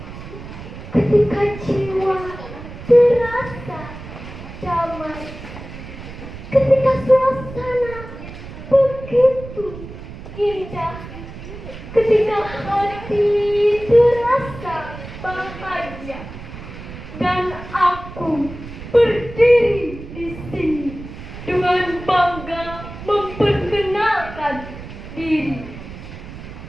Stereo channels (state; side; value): noise; right; rumble, 13 dB below the sound